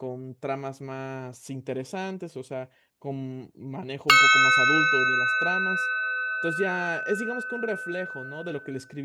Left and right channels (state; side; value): identical; both; correlation 1.00